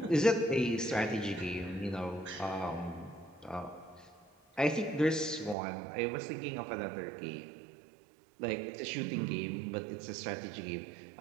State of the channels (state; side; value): drops out; left; at 5.6 s